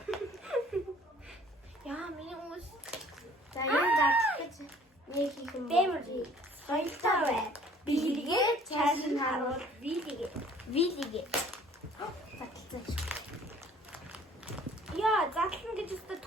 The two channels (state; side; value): normal; both; correlation 0.54